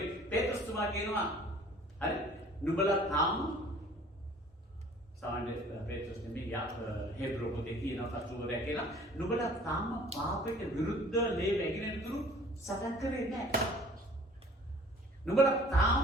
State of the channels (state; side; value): normal; both; correlation 0.52